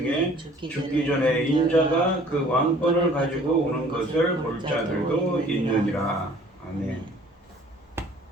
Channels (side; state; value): both; normal; correlation 0.53